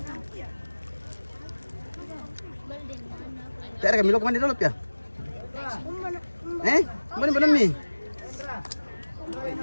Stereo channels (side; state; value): both; inverted; correlation -1.00